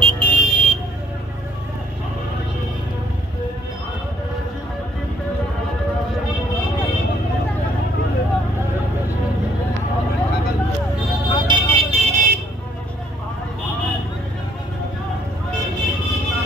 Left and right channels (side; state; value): both; normal; correlation 0.64